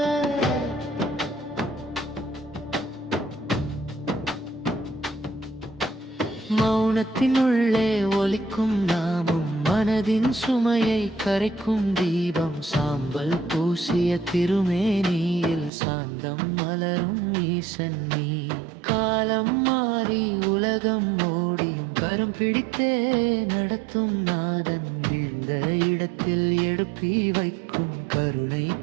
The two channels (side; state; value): left; drops out; at 15.7 s